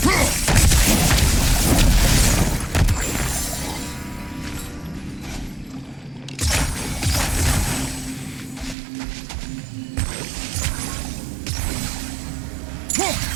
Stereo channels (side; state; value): left; drops out; at 8.8 s